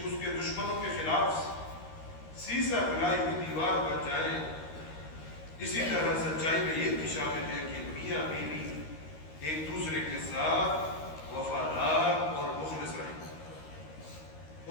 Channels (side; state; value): right; late; 13 ms